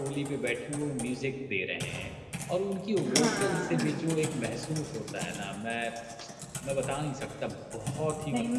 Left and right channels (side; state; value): both; identical; correlation 1.00